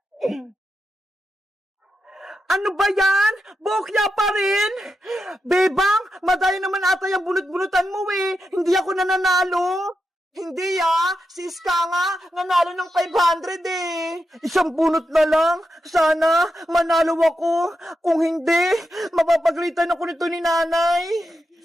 Ano ba yan? Bokya pa rin? Bebang, madaya naman ata yung bunot-bunutan mo Hindi ako nananalo. Hindi si Iska nga, nanalo ng 500 Isang bunot na lang. Sana, manalo ako. Kung hindi, mapapagalitan ako nito ni nanay.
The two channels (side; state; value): both; normal; correlation 0.87